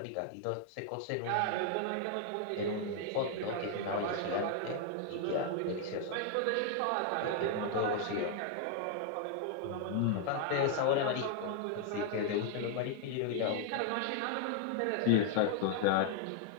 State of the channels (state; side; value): different; both; correlation 0.00